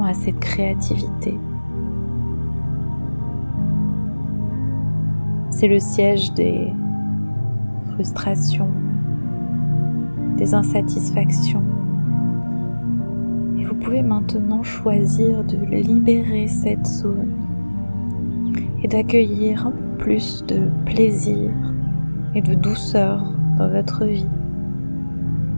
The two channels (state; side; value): inverted; both; correlation -1.00